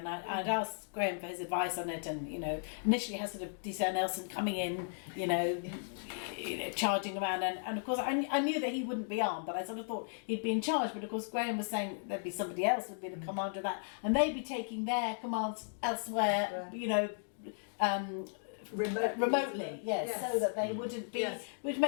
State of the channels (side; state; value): right; silent; digital silence